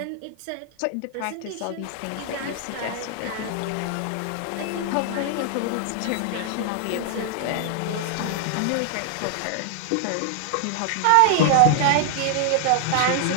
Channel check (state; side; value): different; both; correlation 0.00